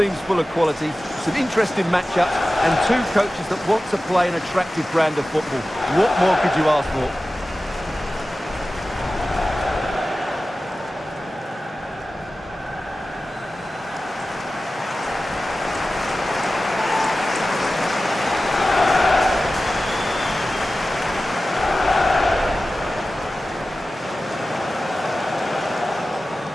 full of quality, some interesting matchups, and two coaches that want to play an attractive brand of football. What more could you ask for?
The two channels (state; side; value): normal; both; correlation 0.95